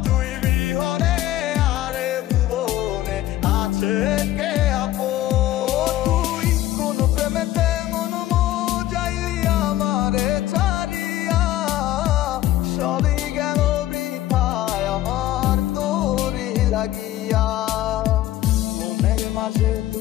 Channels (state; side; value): quieter; right; 14.3 dB